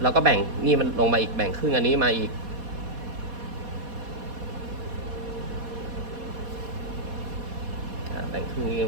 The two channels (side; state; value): left; late; 4.2 ms